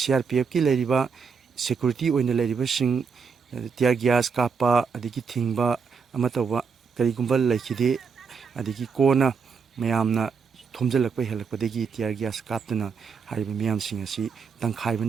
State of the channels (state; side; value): quieter; left; 5.7 dB